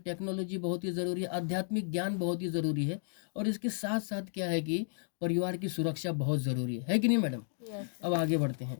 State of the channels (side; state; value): right; silent; digital silence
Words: बहुत ही ज़रूरी है, आध्यात्मिक ज्ञान बहुत ही ज़रूरी है और इसके साथ-साथ क्या है कि परिवार की सुरक्षा बहुत ज़रूरी है कि नहीं मैडम? अब आगे बढ़ते